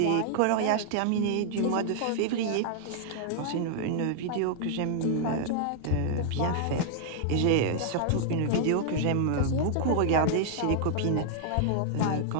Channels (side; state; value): both; different; correlation -0.01